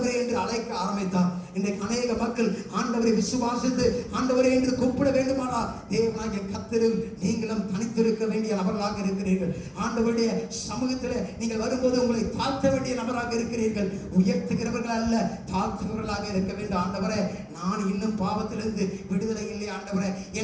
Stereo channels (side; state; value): both; identical; correlation 1.00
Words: என்று அழைக்க ஆரம்பித்தார். இன்றைக்கு அநேக மக்கள் ஆண்டவரை விசுவாசித்து ஆண்டவரே என்று கூப்பிட வேண்டுமானால் தேவனாகிய கர்த்தரில் நீங்களும் தனித்திருக்க வேண்டிய நபர்களாக இருக்கிறீர்கள். ஆண்டவருடைய சமூகத்தில் நீங்கள் வரும்போது உங்களை தாழ்த்த வேண்டிய நபராக இருக்கிறீர்கள். உயர்த்துகிறவர்கள் அல்ல, தாழ்த்துகிறவர்களாக இருக்க வேண்டும். ஆண்டவரே, நான் இன்னும் பாவத்திலிருந்து விடுதலை இல்லை ஆண்டவரே,